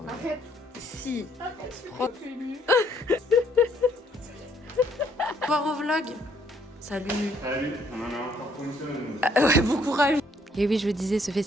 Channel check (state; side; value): normal; both; correlation 0.66